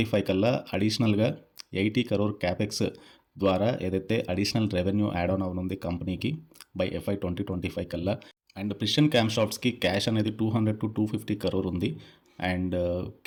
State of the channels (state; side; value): identical; both; correlation 1.00